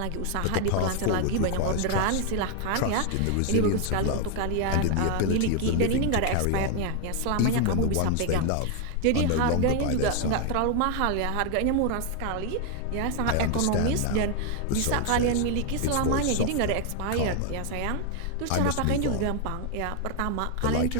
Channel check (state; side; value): different; both; correlation 0.01